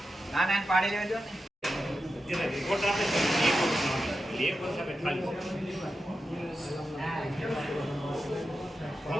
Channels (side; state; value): both; normal; correlation 0.90